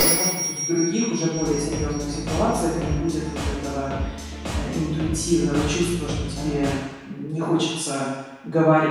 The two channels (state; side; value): identical; both; correlation 1.00